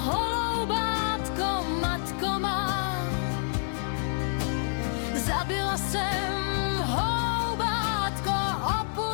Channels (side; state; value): right; silent; digital silence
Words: matko má. Zabila jsem holoubátko,